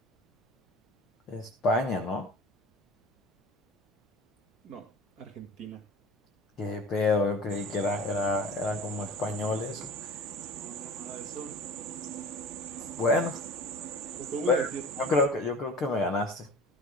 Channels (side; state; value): both; normal; correlation 0.39